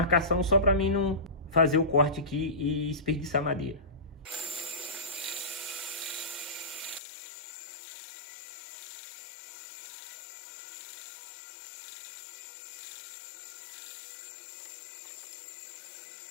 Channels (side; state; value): right; drops out; at 7.0 s